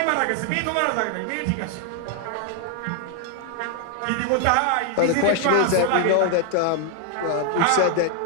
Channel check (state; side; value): different; both; correlation 0.00